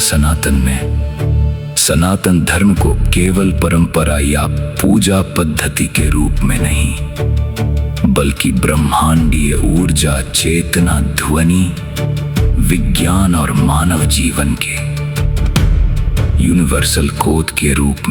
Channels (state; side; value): identical; both; correlation 1.00